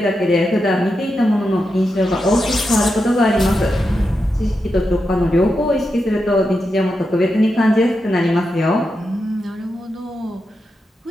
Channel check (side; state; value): both; normal; correlation 0.87